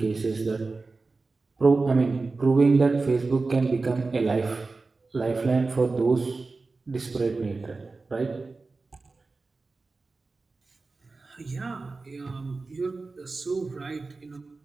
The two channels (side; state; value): left; quieter; 3.8 dB